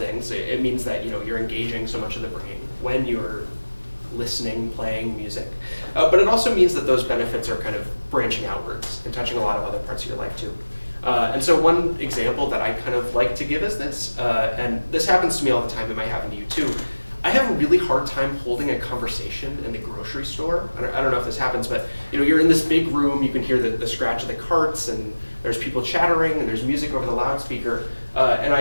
It means that you're engaging so much of the brain when you're listening, playing music. But it also means that those benefits are kind of branching outwards and touching a lot of other parts of your life too. And so one example that I kind of like to give is this, and this happens to me all the time, it might happen to you too. I have a really hard time holding a conversation in the grocery store. I don't know if this happens, but you're in this big room, you can hear the scratch of the carts, and there's people chattering, and there's music over the loudspeaker. And I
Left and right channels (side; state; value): both; inverted; correlation -1.00